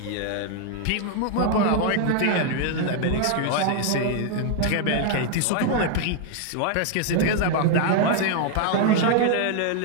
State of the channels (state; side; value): different; both; correlation 0.00